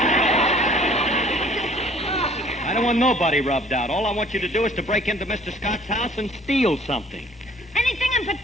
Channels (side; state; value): both; normal; correlation 0.55